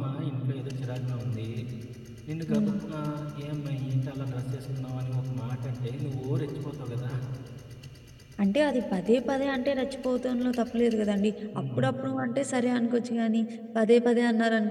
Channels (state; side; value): identical; both; correlation 1.00